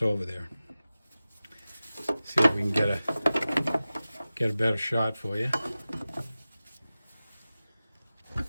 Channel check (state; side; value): inverted; both; correlation -0.96